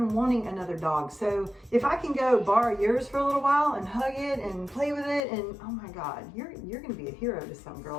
wanting another dog. So if I can go borrow yours for a little while and hug it and play with it, and oh my God, you're gonna be a hero to some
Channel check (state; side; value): drops out; right; at 5.2 s